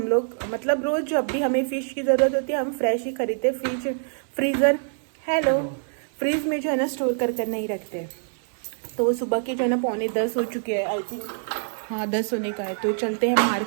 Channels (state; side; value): silent; left; digital silence